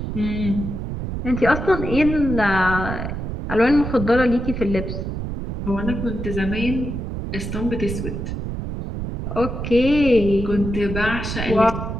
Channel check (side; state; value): right; noise; rumble, 5 dB below the sound